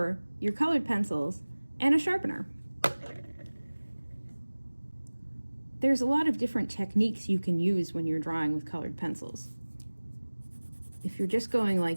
your colored pencils, and a sharpener. There's a lot of different techniques you can use when you're drawing with colored pencils. If you're just going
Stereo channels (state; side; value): inverted; both; correlation -1.00